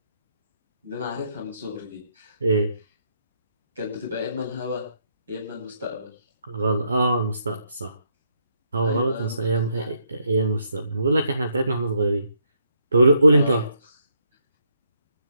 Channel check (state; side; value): inverted; both; correlation -0.75